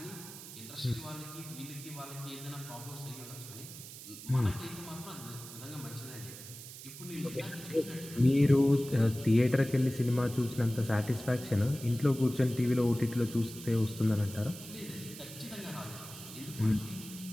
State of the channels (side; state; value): right; noise; hiss, 13 dB below the sound